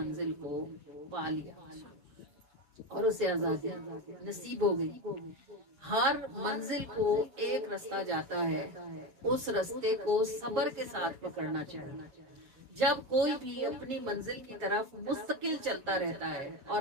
کو پا لیا اور اسے آزادی نصیب ہو گئی۔ ہر منزل کو ایک رستہ جاتا ہے، اس رستے کو صبر کے ساتھ پکڑنا چاہیے۔ جب کوئی بھی اپنی منزل کی طرف مستقل چلتا رہتا ہے اور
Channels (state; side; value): late; left; 7.4 ms